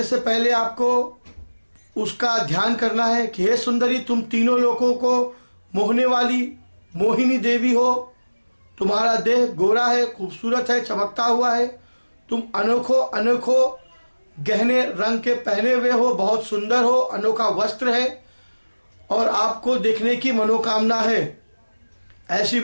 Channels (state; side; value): inverted; both; correlation -1.00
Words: से पहले आपको उसका ध्यान करना है कि हे सुंदरी, तुम तीनों लोगों को मोहने वाली मोहिनी देवी हो। तुम्हारा देह गोरा है, खूबसूरत है, चमकता हुआ है। तुम अनोखो गहने रंग के पहने हुए हो, बहुत सुंदर हो, अनोखा वस्त्र है और आपको देखने की मनोकामना है। ऐसी